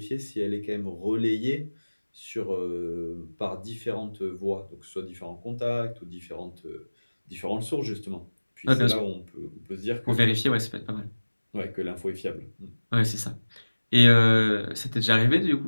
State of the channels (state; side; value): inverted; both; correlation -1.00